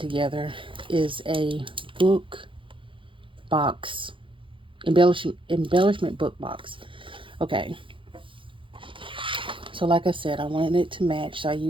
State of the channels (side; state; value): left; late; 0.25 ms